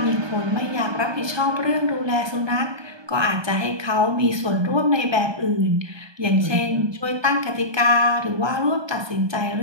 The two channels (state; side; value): late; left; 1.2 ms